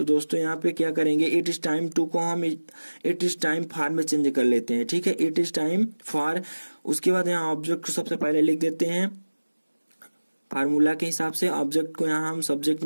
दोस्तों यहाँ पे क्या करेंगे, इट इज टाइम टू को हम इट इज टाइम फॉर में चेंज कर लेते हैं, ठीक है, इट इज टाइम फॉर। उसके बाद यहाँ ऑब्जेक्ट को सबसे पहले लिख देते हैं फार्मूला के हिसाब से, ऑब्जेक्ट को यहाँ हम सब्जेक्ट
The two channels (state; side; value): inverted; both; correlation -1.00